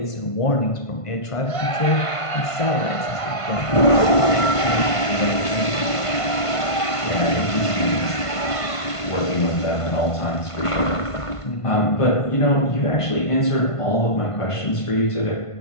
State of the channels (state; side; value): late; right; 1.5 ms